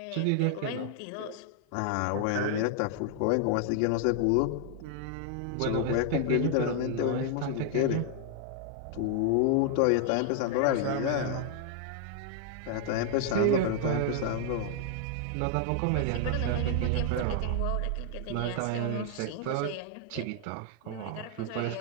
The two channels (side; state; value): both; different; correlation 0.00